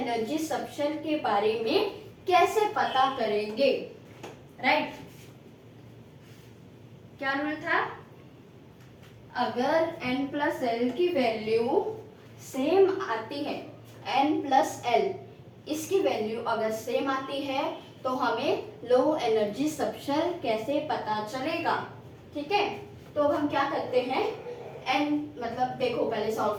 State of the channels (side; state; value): both; identical; correlation 1.00